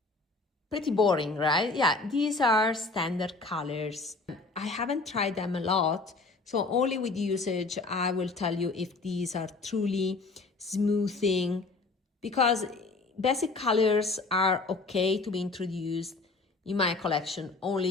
Pretty boring, right? Yeah, these are standard colors. I haven't tried them a lot, so only with usage I will tell you if these are truly smoothing, because basic colors are okay to be introduced in my collection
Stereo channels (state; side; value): quieter; right; 3.6 dB